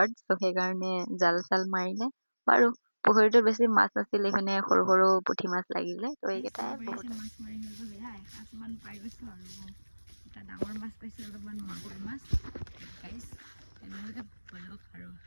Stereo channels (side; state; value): both; inverted; correlation -1.00